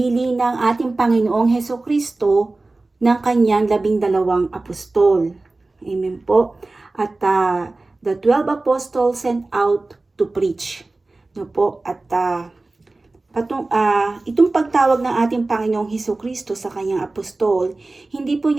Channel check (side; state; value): left; quieter; 3.2 dB